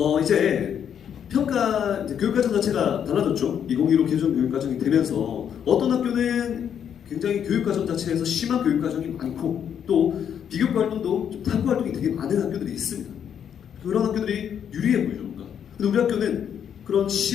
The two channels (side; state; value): right; quieter; 8.6 dB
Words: 이제 평가, 이제 교육과정 자체가 달라졌죠. 2015 개정 교육과정이 되면서 어떤 학교는 굉장히 교육과정 자체에서 심한 교육과정이 많고 또 비교과 활동도 좀 탐구 활동이 되게 많은 학교들이 있습니다. 그런 학교들이 유리해 보이죠, 뭔가. 근데 우리 학교는 그런